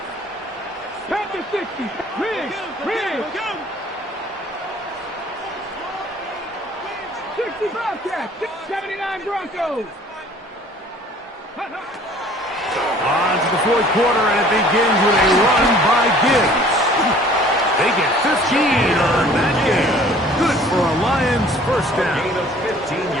Panther 60. Rig. 60 Bobcats. 79 Broncos. On to the 4th quarter, and it begins with a run by Gibbs. They get 15 on that game. Good for a Lions first down. Gain of 15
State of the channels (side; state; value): both; normal; correlation 0.52